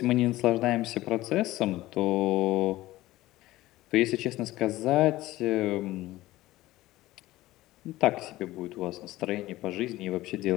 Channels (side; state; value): right; quieter; 17.0 dB